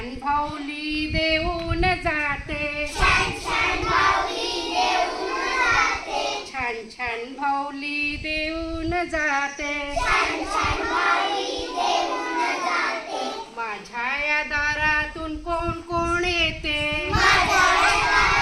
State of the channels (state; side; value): identical; both; correlation 1.00